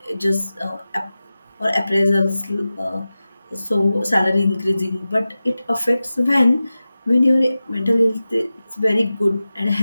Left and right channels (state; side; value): inverted; both; correlation -0.94